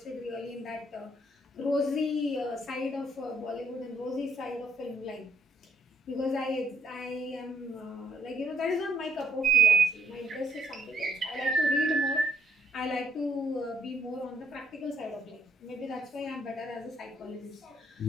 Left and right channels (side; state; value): both; normal; correlation 0.69